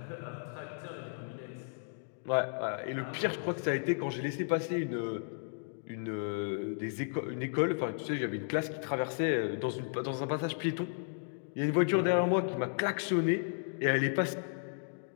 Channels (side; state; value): right; silent; digital silence